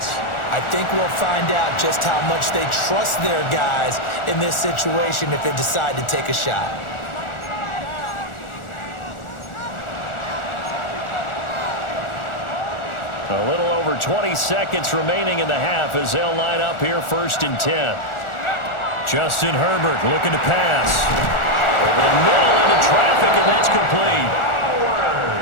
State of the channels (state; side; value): late; right; 1.4 ms